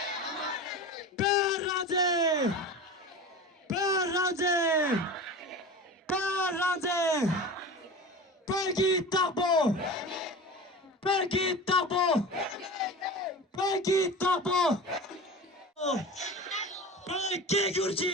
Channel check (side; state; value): both; normal; correlation 0.32